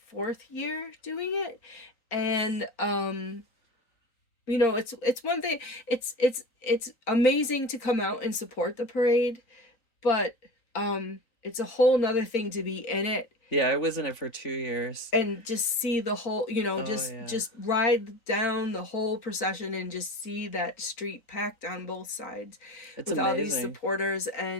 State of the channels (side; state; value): right; late; 3.9 ms